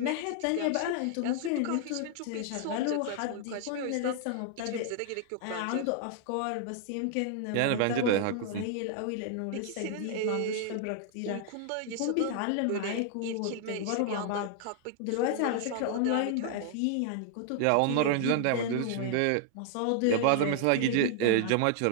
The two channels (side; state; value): both; different; correlation 0.00